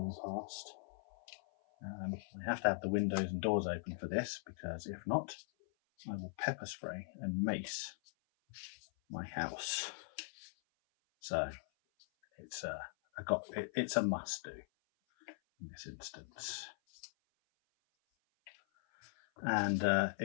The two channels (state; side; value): silent; right; 51 dB below the other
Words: past. I have to have the windows and doors open for this, because if not, I will pepper spray and mace my house. So it's a must do in this instance. And